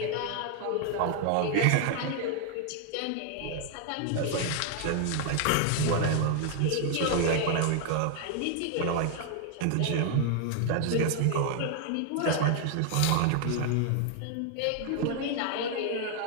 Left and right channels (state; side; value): different; both; correlation 0.00